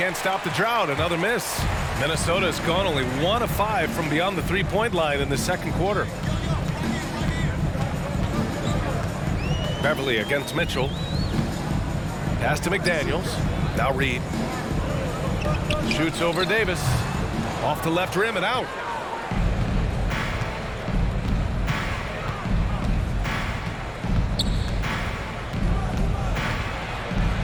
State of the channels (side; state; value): both; identical; correlation 1.00